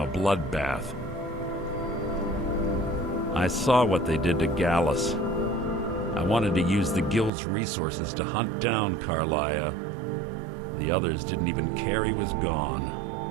a bloodbath. I saw what they did to Gallus. I wanted to use the guild's resources to hunt down Carlia. The others didn't even care he was gone.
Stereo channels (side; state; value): left; drops out; at 7.3 s